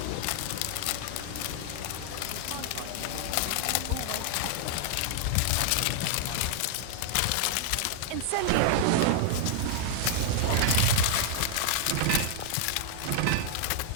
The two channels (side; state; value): both; different; correlation -0.01